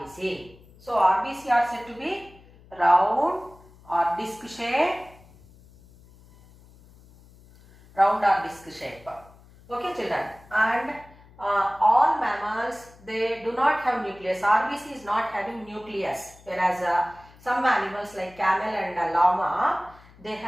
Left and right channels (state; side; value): noise; left; hum, 25 dB below the sound